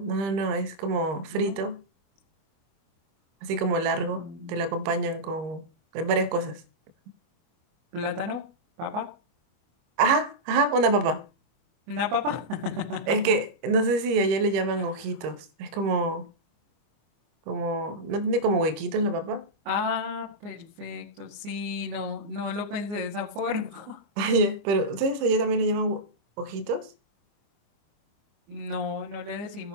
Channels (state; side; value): late; left; 25 ms